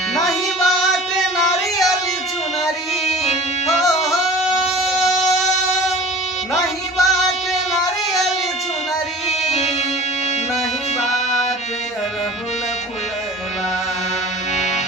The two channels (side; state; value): both; normal; correlation 0.42